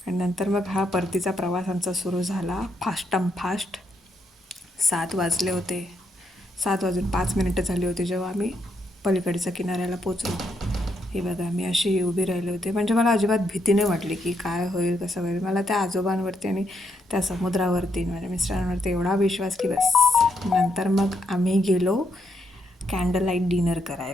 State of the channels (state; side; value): normal; both; correlation 0.78